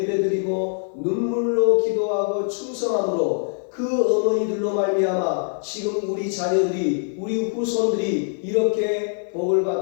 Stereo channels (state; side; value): silent; right; 57 dB below the other